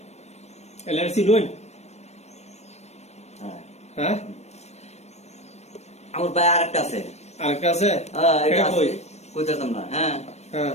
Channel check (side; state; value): right; late; 0.32 ms